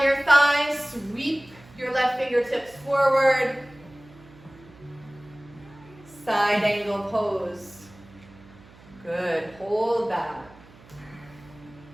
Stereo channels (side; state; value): right; noise; hum, 23 dB below the sound